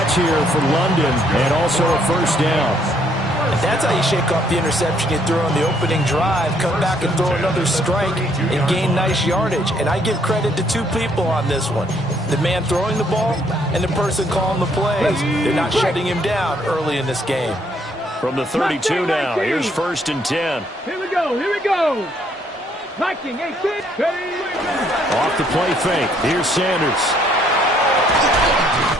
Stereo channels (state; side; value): normal; both; correlation 0.68